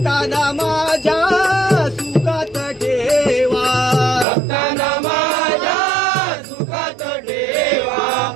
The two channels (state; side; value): drops out; left; at 4.2 s